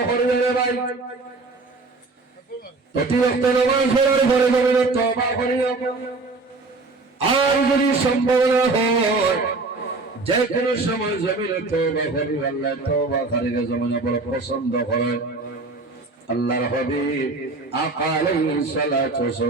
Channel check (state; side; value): quieter; left; 3.6 dB